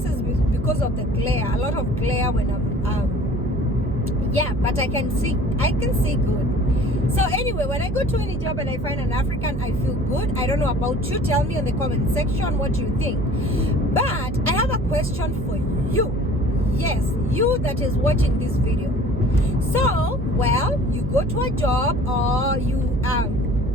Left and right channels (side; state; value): right; noise; hum, 5 dB below the sound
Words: is because of the glare. A lot of glare when but I can see good. So anyway, when I go to any job and I find an African, I feel good. I don't know about you. Tell me in the comment section what you think. But I have a question for you. Yes, you that is watching this video. So, well, you go to a job, or you